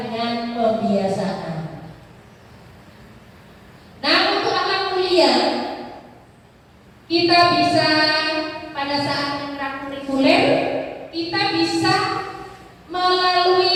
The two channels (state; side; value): identical; both; correlation 1.00